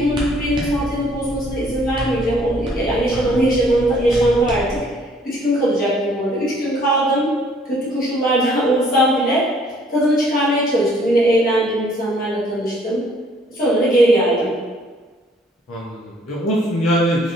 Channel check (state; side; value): normal; both; correlation 0.61